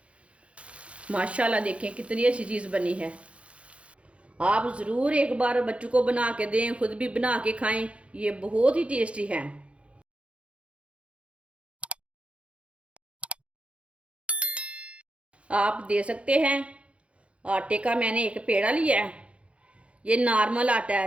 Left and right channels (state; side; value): late; left; 0.061 ms